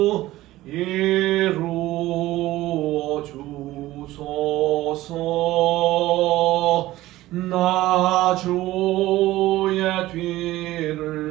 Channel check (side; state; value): left; quieter; 16.6 dB